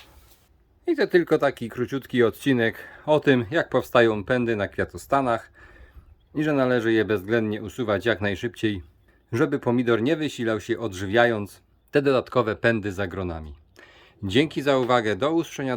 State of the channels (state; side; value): identical; both; correlation 1.00